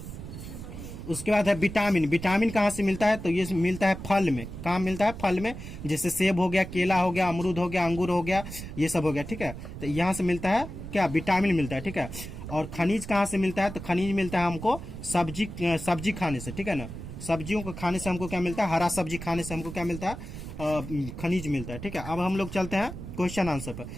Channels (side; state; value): right; noise; rumble, 10 dB below the sound